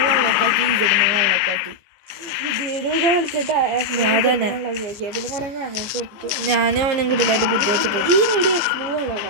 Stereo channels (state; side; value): late; left; 14 ms